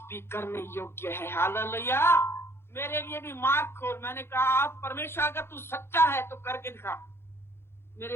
भी करने योग्य है। हालेलुया। मेरे लिए भी मार्ग खोल। मैंने कहा आप परमेश्वर अगर तू सच्चा है तो करके दिखा।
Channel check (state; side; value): late; right; 0.12 ms